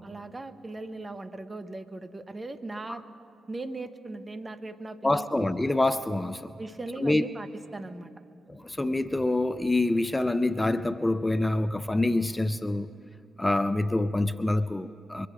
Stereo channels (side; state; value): both; normal; correlation 0.96